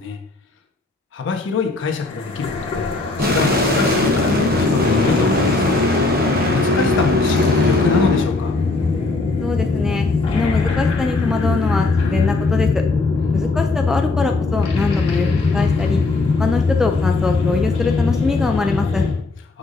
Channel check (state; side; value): quieter; right; 3.3 dB